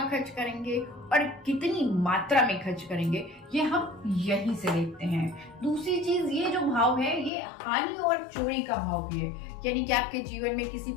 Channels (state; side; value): drops out; right; at 7.3 s